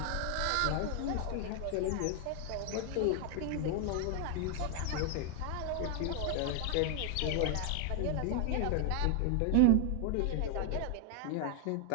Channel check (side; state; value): both; different; correlation 0.00